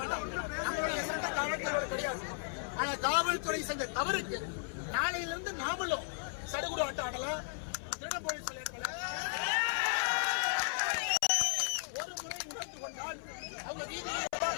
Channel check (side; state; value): right; silent; 54 dB below the other